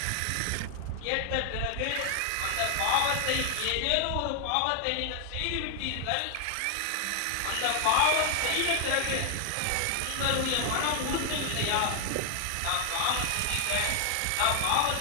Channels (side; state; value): both; different; correlation 0.00